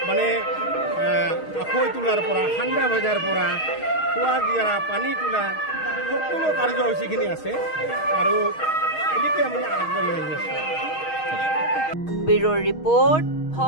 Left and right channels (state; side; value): late; right; 6.4 ms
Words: মানে আখৈ তোলাৰ পৰা ঠাণ্ডা ভজাৰ পৰা খোৱা গিয়াৰা পানী তোলা সকলো কাৰ্যসূচীখিনি আছে আৰু এনেকৈ আমি আগবাঢ়ি আহি আছোঁ ব্যুৰ ৰিপৰ্ট